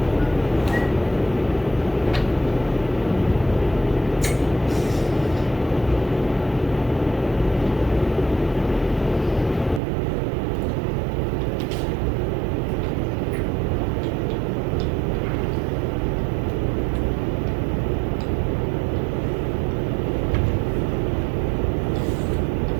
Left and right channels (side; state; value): left; drops out; at 9.8 s